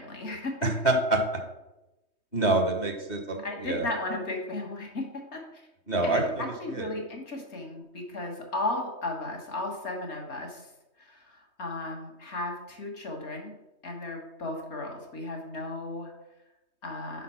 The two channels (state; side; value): late; right; 3.2 ms